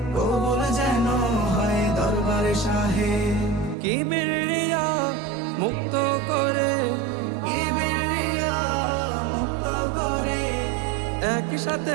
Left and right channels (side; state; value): left; drops out; at 3.8 s